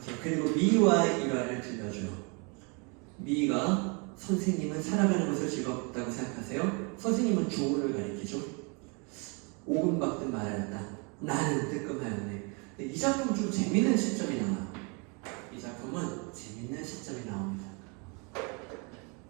그리고 미와 일화를 들려줘요. 미가 선생님은 살아가는 것을 즐겁다고 생각하세요? 선생님은 조은을 가리키죠. 오금박듯 말하였다. 나는 뜨끔하였네. 이 작품은 좀 재밌는 시점이 나와요. 이 작품은 재밌는 시점이 나옵니다.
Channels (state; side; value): quieter; left; 32.9 dB